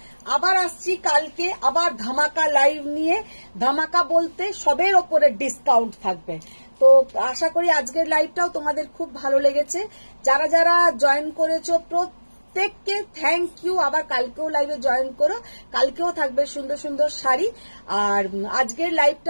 আবার আসছি কালকে আবার ধামাকা লাইভ নিয়ে। ধামাকা বলতে সবের ওপরে ডিসকাউন্ট থাকবে। তো আশা করি আজকের লাইভটাও তোমাদের খুব ভালো লেগেছে। যারা যারা জয়েন করেছো প্রত্যেককে থ্যাংক ইউ। আবার কালকেও লাইভে জয়েন করো, কালকেও থাকবে সুন্দর সুন্দর শাড়ি। আর আজকের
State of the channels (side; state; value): both; inverted; correlation -1.00